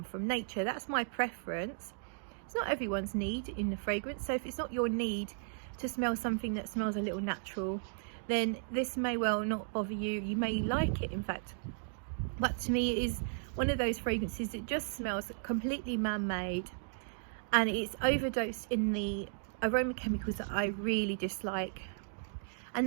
from nature. That's my preference. It's not everyone's need in the fragrance, so if it's not your need to smell something that smells a little natural, then this may well not bother you. You may like it, in fact. But to me, it is one of those fragrances that just smells completely man-made, and it's overdosed in the aroma chemicals that I really dislike.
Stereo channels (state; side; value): silent; left; digital silence